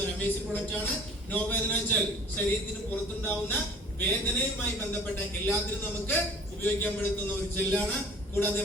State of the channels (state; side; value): normal; both; correlation 0.47